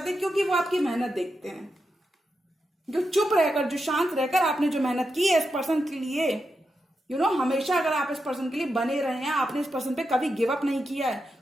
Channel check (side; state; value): both; normal; correlation 0.87